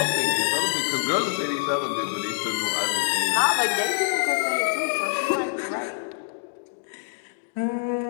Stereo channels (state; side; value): silent; right; digital silence